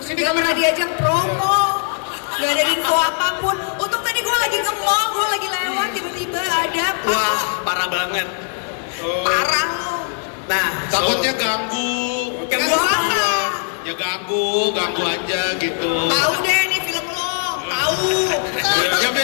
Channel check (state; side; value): silent; right; 58 dB below the other